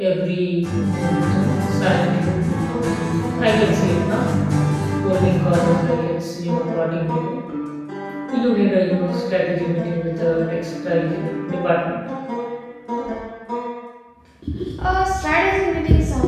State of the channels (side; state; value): both; identical; correlation 1.00